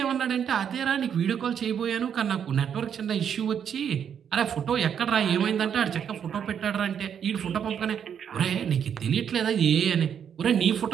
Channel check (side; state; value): left; quieter; 8.2 dB